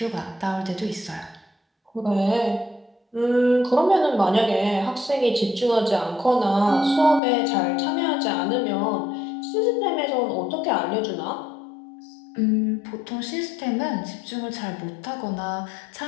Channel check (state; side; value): drops out; right; at 7.2 s